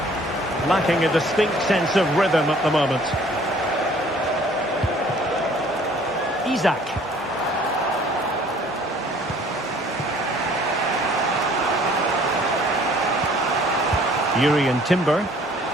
Lacking a distinct sense of rhythm at the moment. Isak. Urian Timber.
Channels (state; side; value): normal; both; correlation 0.55